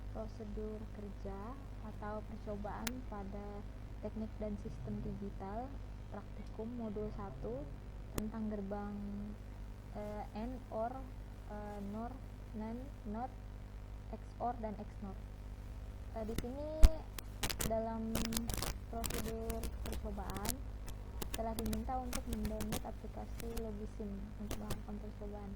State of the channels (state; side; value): identical; both; correlation 1.00